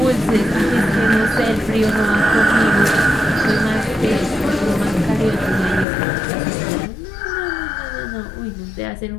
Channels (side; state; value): right; drops out; at 5.9 s